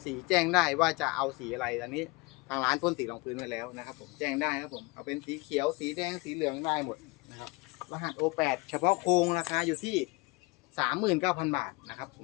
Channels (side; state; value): right; quieter; 25.2 dB